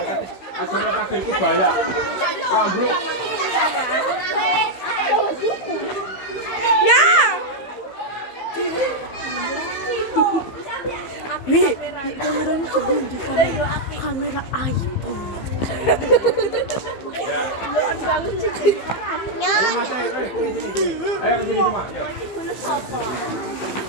asalnya kaki itu banyak. Wah, bro. Ya. Kameranya sebelum di kamera iPhone. Ayo Mas, ayo ke sini semua.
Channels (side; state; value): right; late; 15 ms